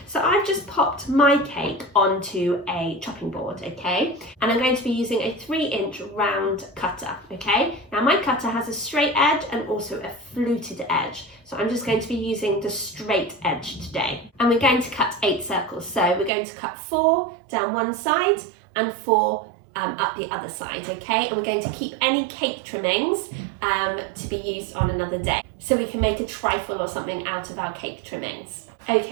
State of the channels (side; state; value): left; drops out; at 16.3 s